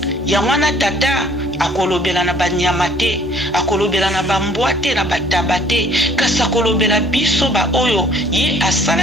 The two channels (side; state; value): both; normal; correlation 0.57